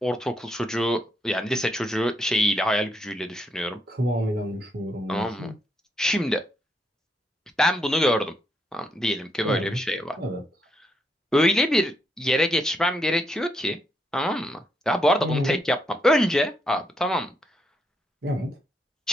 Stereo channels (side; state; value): both; normal; correlation 0.77